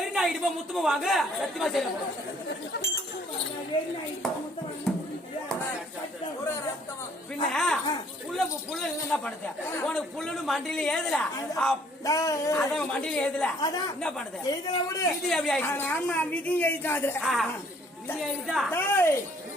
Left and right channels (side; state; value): both; normal; correlation 0.61